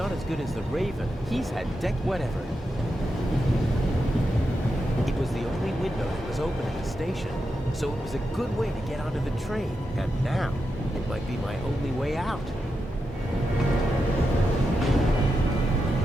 as good as the Raven. He's had whatever. It was the only window that was open at the station, so it was a good way to get onto the train. And now, it might be my only way out.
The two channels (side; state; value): both; normal; correlation 0.87